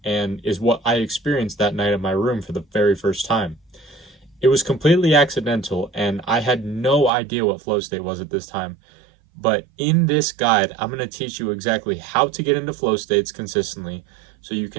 and is what I experienced that night in my room for the very first time. It was completely accidental and I had no idea what flow state was at this time. But in this guide, I'm going to teach you exactly how to get into flow states consistently so you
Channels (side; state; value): left; drops out; at 7.1 s